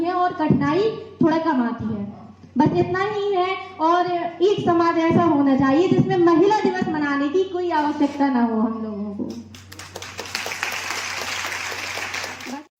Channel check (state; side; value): identical; both; correlation 1.00